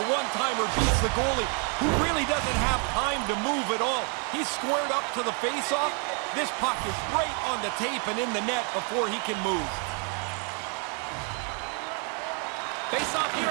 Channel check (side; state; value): left; quieter; 38.3 dB